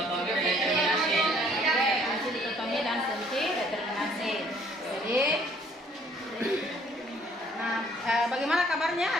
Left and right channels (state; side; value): normal; both; correlation 0.60